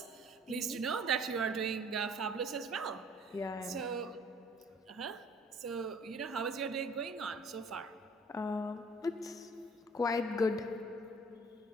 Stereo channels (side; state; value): both; normal; correlation 0.53